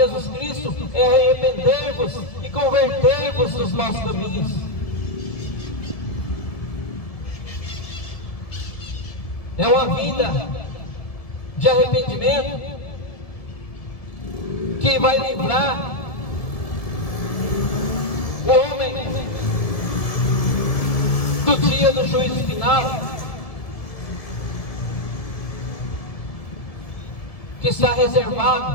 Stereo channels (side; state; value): right; late; 1.7 ms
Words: Cristo é arrepender-vos e converter-vos dos maus caminhos. É uma vida de arrependimento que vai livrar o homem do dia do juízo final, que está